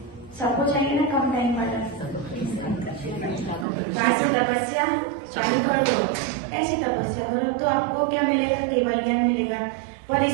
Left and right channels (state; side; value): drops out; left; at 3.7 s